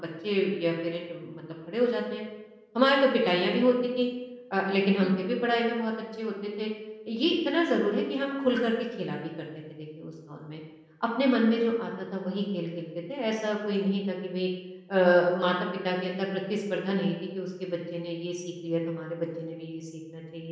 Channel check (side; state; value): both; identical; correlation 1.00